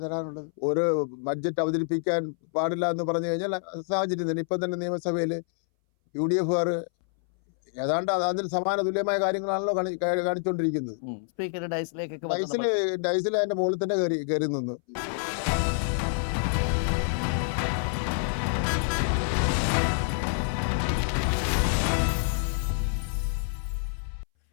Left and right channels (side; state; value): right; silent; 60 dB below the other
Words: തരാനുള്ളത്. ഒരു ബഡ്ജറ്റ് അവതരിപ്പിക്കാൻ പാടില്ല എന്ന് പറഞ്ഞു കഴിഞ്ഞാൽ സാഹചര്യം തന്നെ. ഇപ്പം തന്നെ നിയമസഭയിൽ UDF ഏതാണ്ട് അതിന് സമാന തുല്യമായ കാര്യങ്ങളാണല്ലോ കാണിച്ചുകൊണ്ടിരിക്കുന്നത്. ഡൈസിൽ അതിന്റെ മുകളിൽ തന്നെ കയറി നിന്നു.